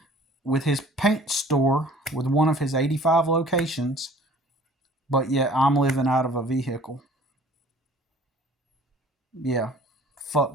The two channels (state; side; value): normal; both; correlation 0.51